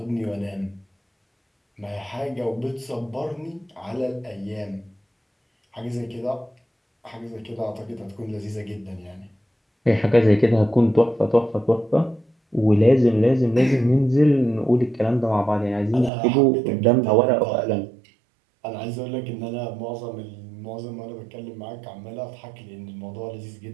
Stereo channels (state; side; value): drops out; left; at 16.1 s